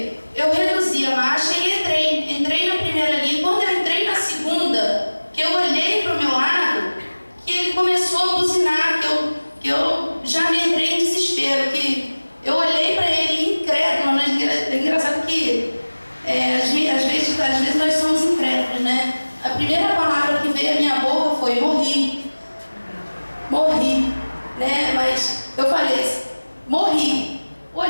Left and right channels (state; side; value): inverted; both; correlation -1.00